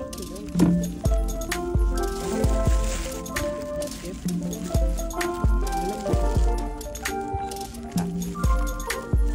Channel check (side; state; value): both; identical; correlation 1.00